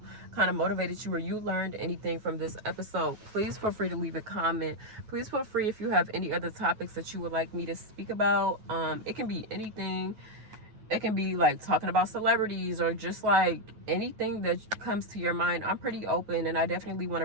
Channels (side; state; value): left; late; 9.3 ms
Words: kind of motivated you, or you learned anything from this episode, please feel free to leave a comment. Please feel free, if you have any other topics that you would like me to speak about. It can be anything. It can be like talking about celebrities, or just like anything that comes to your mind. I'm pretty open, and I definitely want to